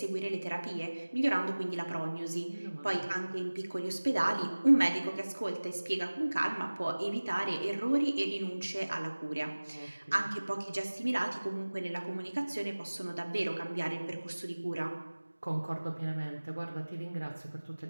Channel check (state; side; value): inverted; both; correlation -1.00